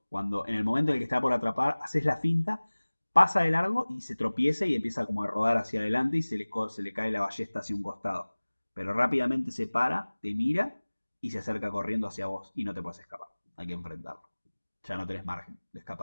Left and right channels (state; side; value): inverted; both; correlation -1.00